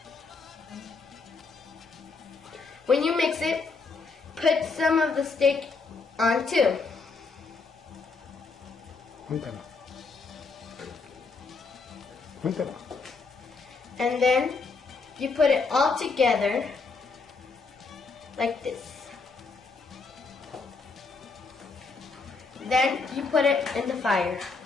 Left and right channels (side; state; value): right; quieter; 4.3 dB